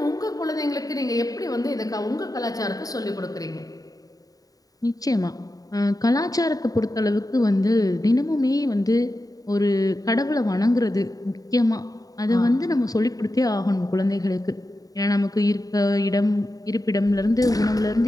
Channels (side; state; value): right; late; 0.18 ms